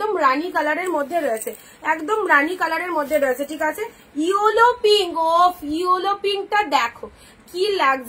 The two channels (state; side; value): identical; both; correlation 1.00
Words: রানী কালারের মধ্যে রয়েছে, একদম রানী কালারের মধ্যে রয়েছে, ঠিক আছে। ইয়েলো পিঙ্ক, ও ইয়েলো পিঙ্কটা দেখো কি